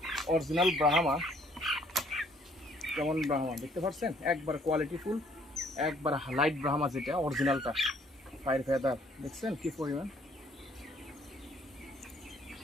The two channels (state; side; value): normal; both; correlation 0.62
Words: অরিজিনাল ব্রাহ্মা। কেমন ব্রাহ্মা দেখতে পাচ্ছেন? একবার কোয়ালিটি ফুল, একবার লাইট ব্রাহ্মা, যেটা অরিজিনালটা। পায়ের ফেদার দেখছেন কি পরিমাণ?